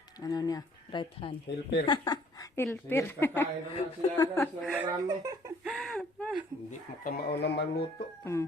right hand. Hilper. Hilper. Sige, kakain na siya guys ng marami. Hindi makamao na maluto.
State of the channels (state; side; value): normal; both; correlation 0.59